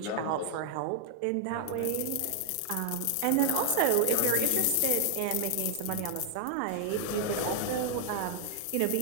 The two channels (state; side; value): different; both; correlation 0.00